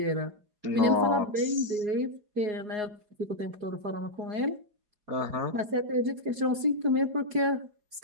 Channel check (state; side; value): late; left; 4.8 ms